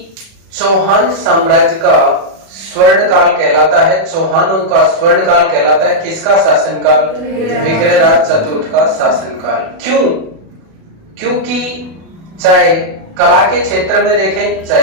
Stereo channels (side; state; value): left; late; 37 ms